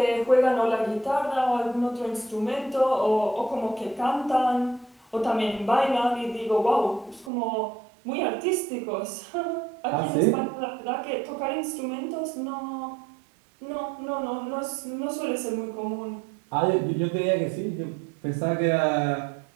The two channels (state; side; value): drops out; left; at 7.3 s